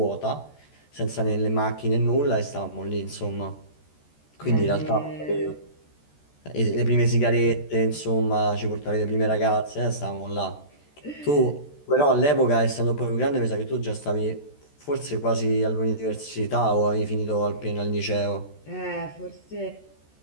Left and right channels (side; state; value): right; late; 14 ms